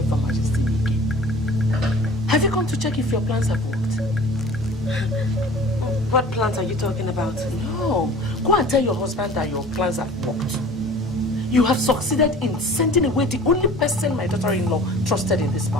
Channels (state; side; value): normal; both; correlation 0.44